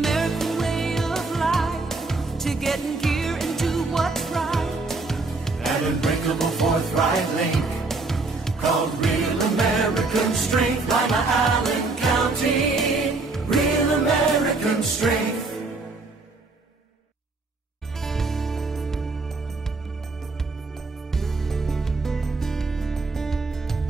way of life, to get in gear and do what's right. An unbreakable forthright link called Real American Strength. Lima, Allen County, Real American Strength.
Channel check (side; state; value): left; quieter; 3.6 dB